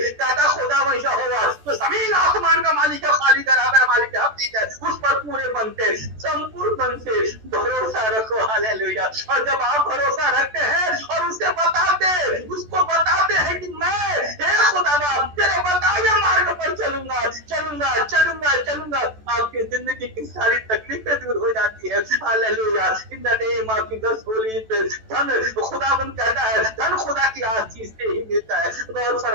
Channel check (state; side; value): late; left; 14 ms